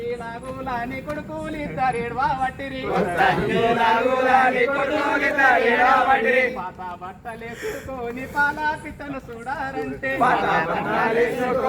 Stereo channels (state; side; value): identical; both; correlation 1.00